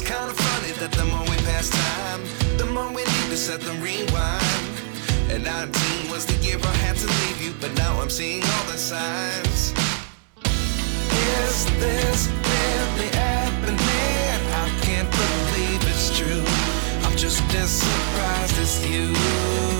kind of funny that the more we pass time, the more we need to set them rewind. And 19 was the year I had to leave you, but now I'm seeing all the signs. Is this really happening? I can't believe it's true. I'm just as surprised as you.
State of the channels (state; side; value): silent; left; 61 dB below the other